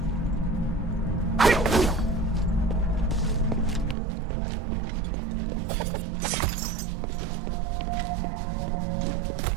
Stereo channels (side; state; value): left; drops out; at 4.0 s